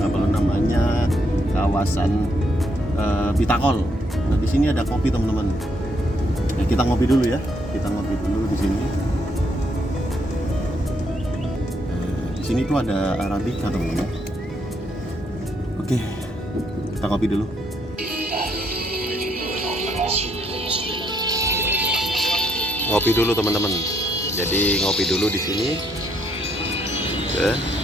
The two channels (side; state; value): both; normal; correlation 0.74